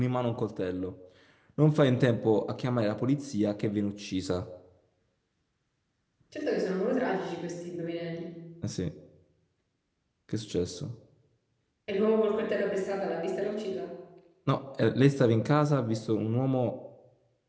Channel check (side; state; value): both; identical; correlation 1.00